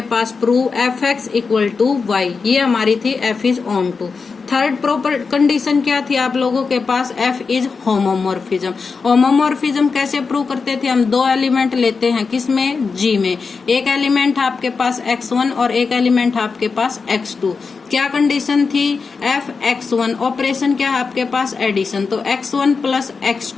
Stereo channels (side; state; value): right; quieter; 4.9 dB